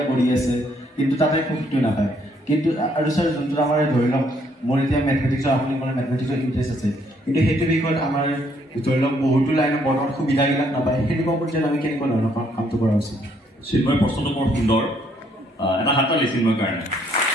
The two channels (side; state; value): both; normal; correlation 0.68